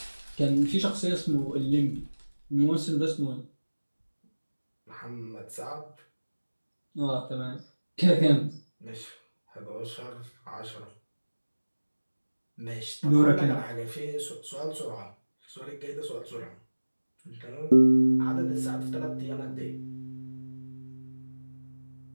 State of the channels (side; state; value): both; inverted; correlation -1.00